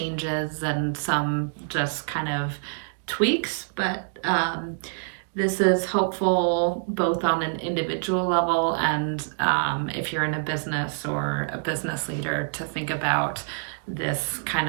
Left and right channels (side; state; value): left; silent; digital silence